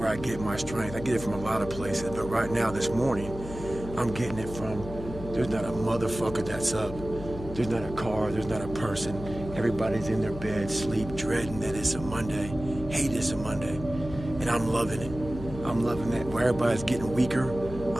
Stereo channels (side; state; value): left; noise; hum, 11 dB below the sound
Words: I get my strength. I get it from a lot of places, but right now, this morning, I'm getting it from, there's not a motherfucker that's up. There's not a car, there's not a person. Everybody's in their bed, sleep, dreading that it's a Monday, hate it's a Monday. And I'm loving it. I'm loving that. Where everybody's getting weaker,